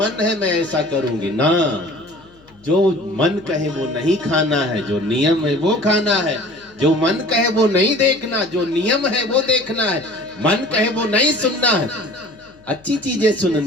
है मैं ऐसा करूंगी ना, जो मन कहे वो नहीं खाना है, जो नियम है वो खाना है। जो मन कहे वो नहीं देखना, जो नियम है वो देखना है। मन कहे वो नहीं सुनना है, अच्छी चीजें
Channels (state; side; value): noise; left; hum, 29 dB below the sound